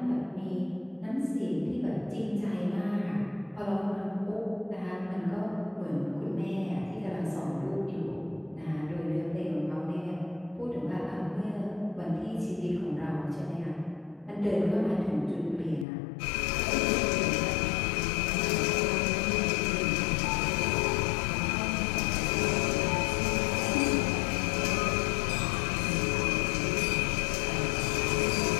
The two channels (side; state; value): right; drops out; at 15.9 s